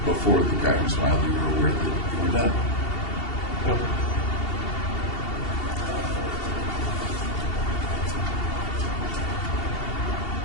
before the guy who smiled, you were aware that you were done. Yep.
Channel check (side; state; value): right; late; 2.7 ms